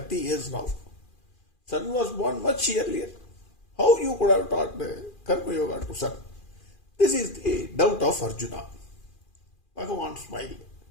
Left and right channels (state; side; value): late; right; 2.4 ms